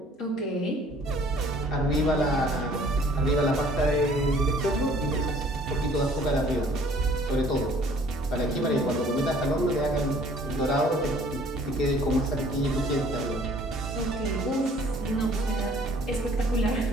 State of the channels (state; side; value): normal; both; correlation 0.56